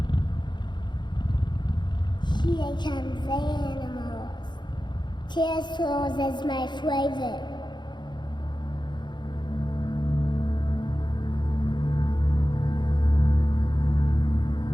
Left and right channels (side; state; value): right; late; 0.22 ms